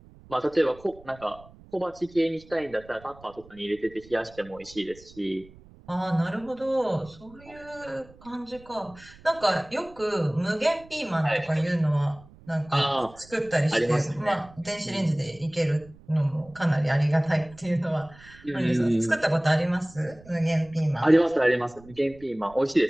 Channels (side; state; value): right; noise; rumble, 23 dB below the sound